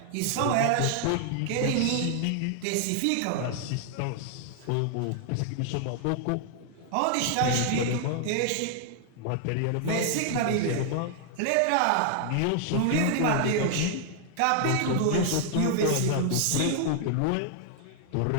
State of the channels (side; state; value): both; different; correlation 0.00